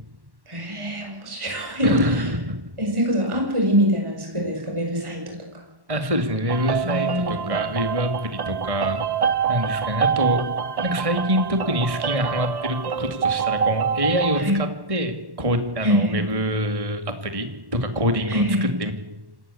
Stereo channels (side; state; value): left; late; 1.1 ms